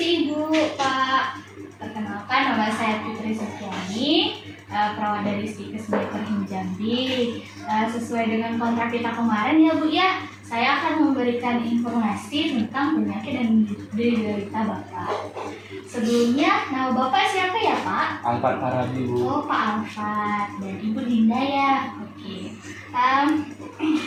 Ibu, Pak. Perkenalkan, nama saya Putri Sukiani, perawat dari Stikes Bakery Jambi. Sesuai dengan kontrak kita kemarin ya Bu ya, saya akan memberikan informasi tentang penyakit dan derita Bapak. Sebelumnya, nama Bapak siapa ya Pak? Alfat Farabi Bu. Oh Pak Alfat, dan Ibu Dinda ya. Oke.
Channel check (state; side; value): identical; both; correlation 1.00